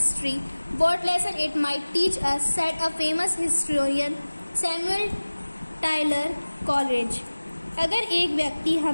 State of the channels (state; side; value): inverted; both; correlation -1.00